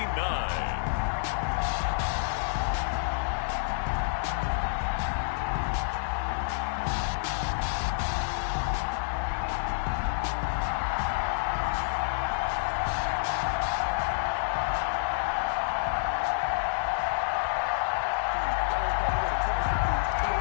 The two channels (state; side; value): silent; right; digital silence